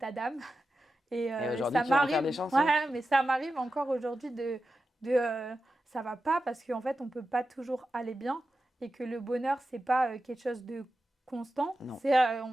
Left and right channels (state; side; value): normal; both; correlation 0.92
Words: d'âme. Et Et aujourd'hui, ça tu vas en faire m'arrive, des chansons. ouais, mais ça m'arrive encore aujourd'hui de ça va pas parce qu'en fait on peut pas toujours aller bien et que le bonheur c'est pas quelque chose de constant, Non. c'est